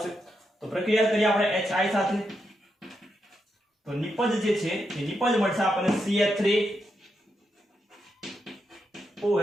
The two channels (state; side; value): normal; both; correlation 0.84